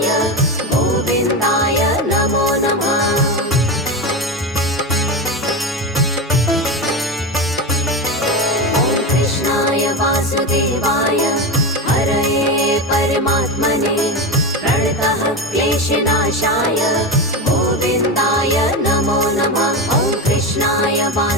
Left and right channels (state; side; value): normal; both; correlation 0.19